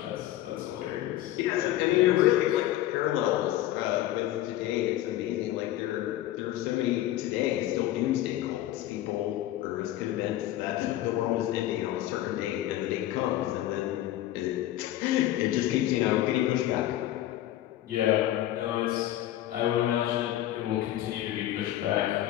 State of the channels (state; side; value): quieter; right; 14.0 dB